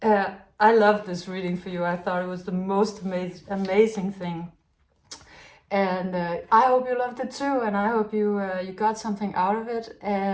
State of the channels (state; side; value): identical; both; correlation 1.00